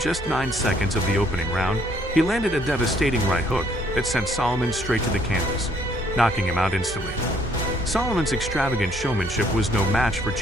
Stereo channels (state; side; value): normal; both; correlation 0.65